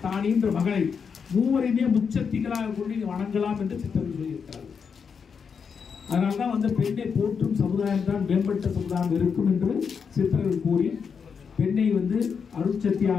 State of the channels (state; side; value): quieter; right; 6.2 dB